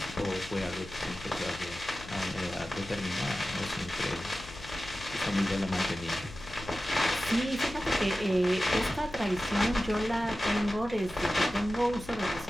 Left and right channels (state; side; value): noise; left; hum, 16 dB below the sound